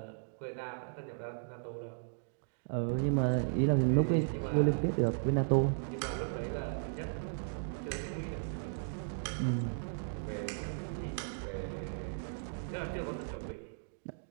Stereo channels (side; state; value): left; silent; digital silence